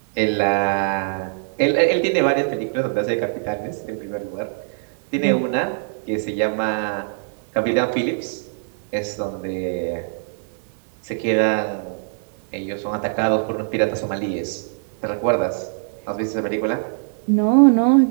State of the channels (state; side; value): silent; left; digital silence